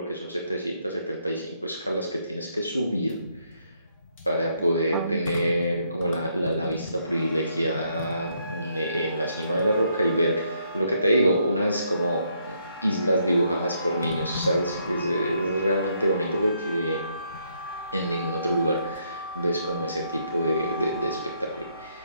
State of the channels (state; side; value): inverted; both; correlation -0.73